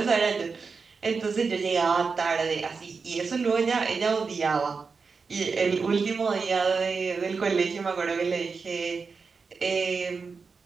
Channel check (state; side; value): quieter; left; 4.9 dB